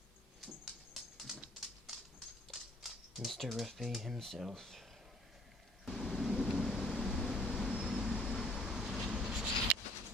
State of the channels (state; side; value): normal; both; correlation 0.58